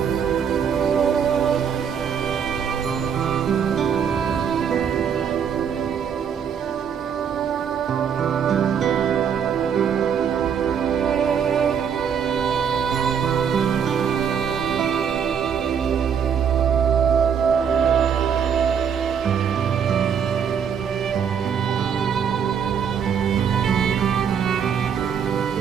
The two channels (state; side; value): quieter; left; 7.6 dB